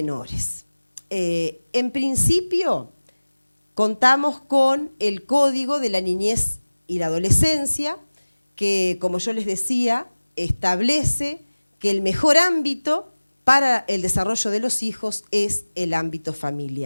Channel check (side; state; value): both; inverted; correlation -1.00